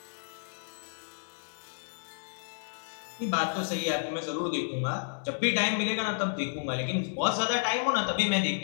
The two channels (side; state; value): right; silent; digital silence